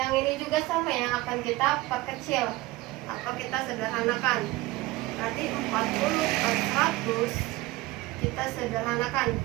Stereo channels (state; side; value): quieter; left; 19.5 dB